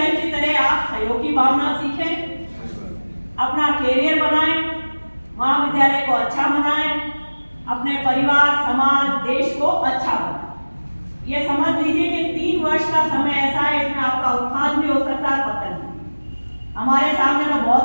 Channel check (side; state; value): both; inverted; correlation -1.00